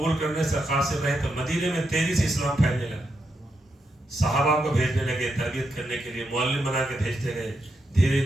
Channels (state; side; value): normal; both; correlation 0.83